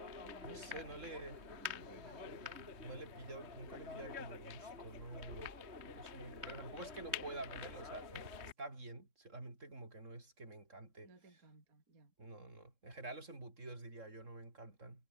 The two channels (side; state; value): left; late; 3.2 ms